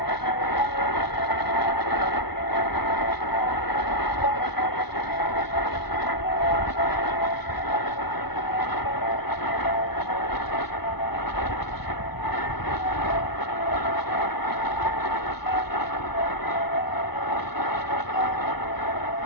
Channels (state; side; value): late; right; 0.98 ms